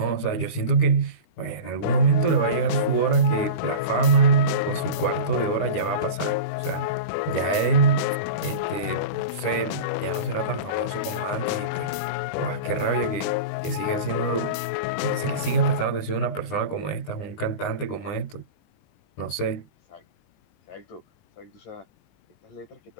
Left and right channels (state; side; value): late; right; 19 ms